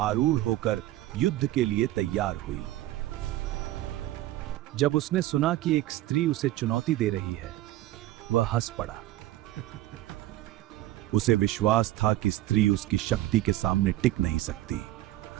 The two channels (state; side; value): quieter; left; 15.3 dB